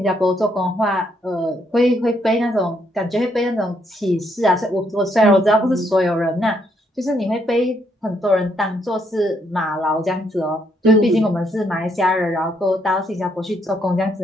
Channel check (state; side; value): normal; both; correlation 0.73